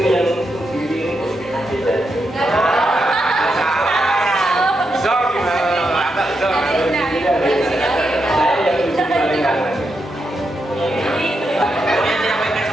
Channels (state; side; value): normal; both; correlation 0.84